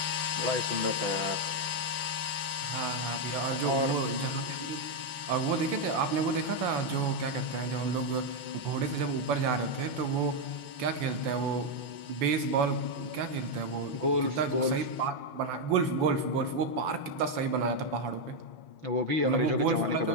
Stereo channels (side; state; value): left; late; 5.8 ms